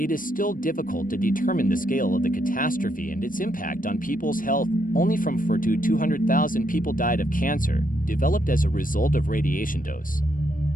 is still difficult to determine the scale of the catastrophe and its impact on people's health. Only from 4 to 200,000 people died of cancer, developed as a result of radiation dose.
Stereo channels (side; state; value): right; late; 0.40 ms